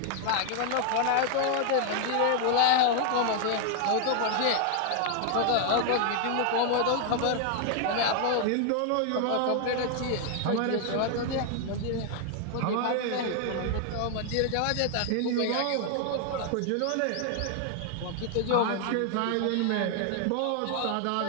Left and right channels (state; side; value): different; both; correlation 0.00